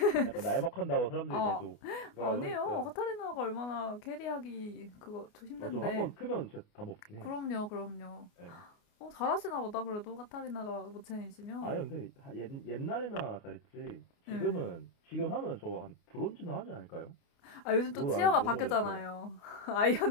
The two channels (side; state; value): right; late; 29 ms